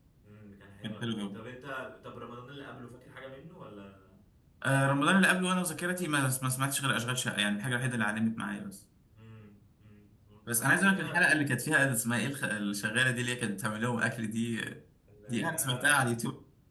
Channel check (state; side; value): identical; both; correlation 1.00